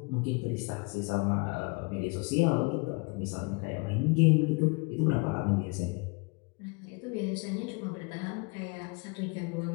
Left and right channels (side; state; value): right; quieter; 30.2 dB